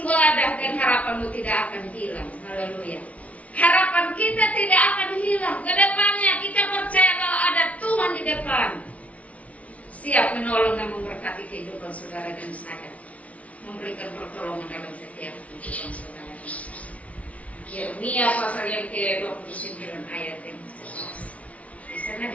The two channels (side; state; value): right; late; 0.067 ms